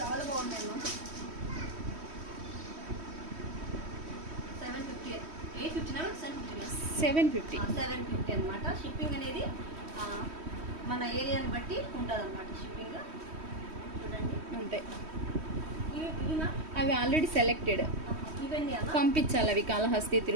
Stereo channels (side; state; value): left; late; 3.1 ms